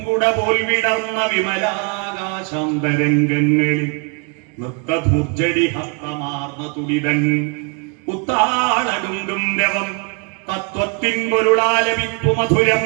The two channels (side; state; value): left; quieter; 37.2 dB